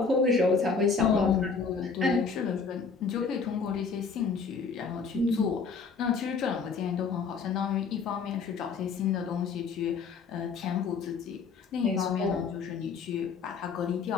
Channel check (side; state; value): right; quieter; 5.2 dB